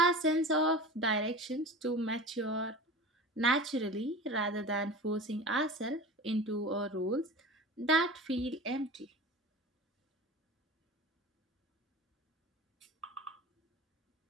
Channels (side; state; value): both; normal; correlation 0.33